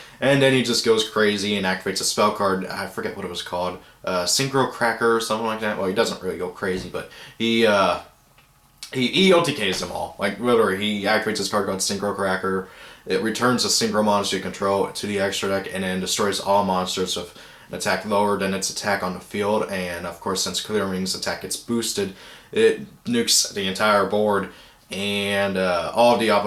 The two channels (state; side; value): identical; both; correlation 1.00